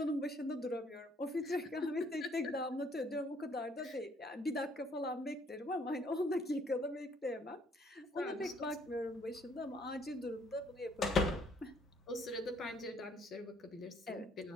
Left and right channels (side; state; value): both; normal; correlation 0.64